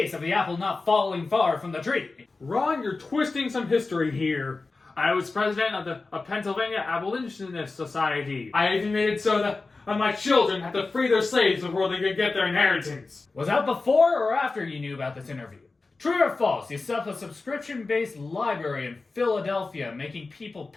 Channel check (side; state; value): right; quieter; 3.7 dB